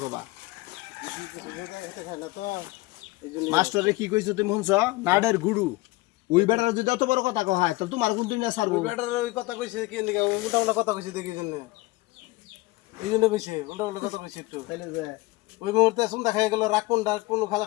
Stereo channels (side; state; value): right; quieter; 21.3 dB